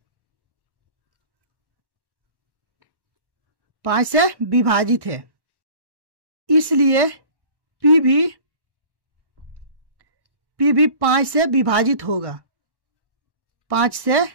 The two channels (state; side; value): late; left; 1.1 ms